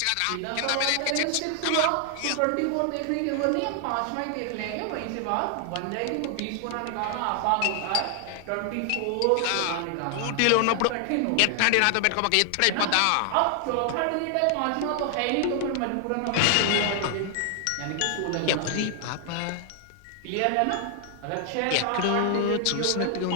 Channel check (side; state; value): both; different; correlation 0.00